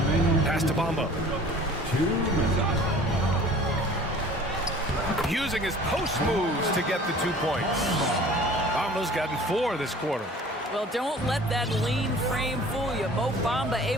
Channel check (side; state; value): both; normal; correlation 0.47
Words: Pass to Bamba. Using his post moves to get the 2 points. Bamba's gotten 4 this quarter. Well, don't let that lean frame fool you. Mo Bamba